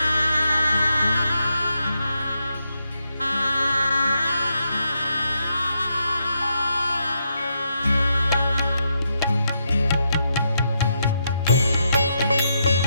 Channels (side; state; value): both; inverted; correlation -0.81